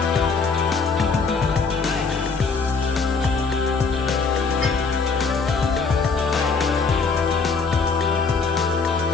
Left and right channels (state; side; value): quieter; right; 4.7 dB